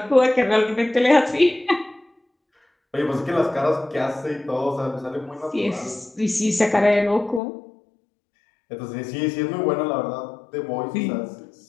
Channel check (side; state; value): right; drops out; at 7.4 s